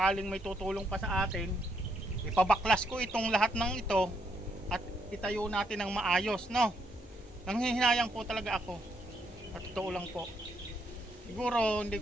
may tutulong pa sa atin, ipabaklas ko itong lahat ng ito at itayo natin ng maayos, no? Nanghihinayang po talaga ako. At totoo lang po. Siguro hindi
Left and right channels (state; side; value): normal; both; correlation 0.75